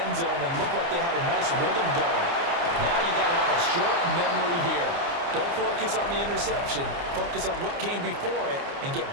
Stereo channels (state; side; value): late; left; 29 ms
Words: zone, and looked like they had a nice rhythm going. Now you got to have a short memory here. Don't focus on the interception. Focus on what came before it and get